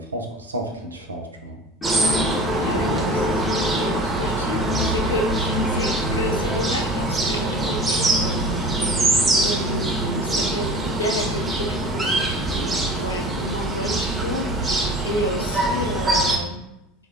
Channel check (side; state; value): both; normal; correlation 0.39